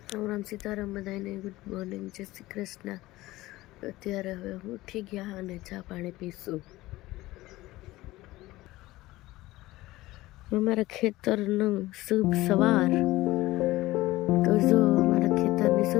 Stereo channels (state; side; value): quieter; right; 18.0 dB